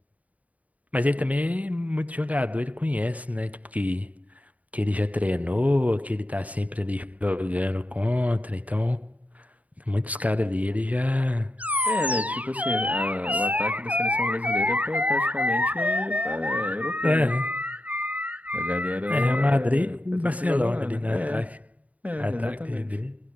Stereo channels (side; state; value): left; late; 0.071 ms